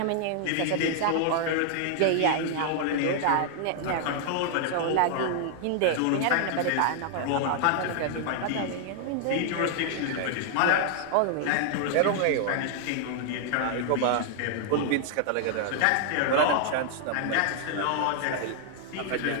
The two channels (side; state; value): both; different; correlation 0.00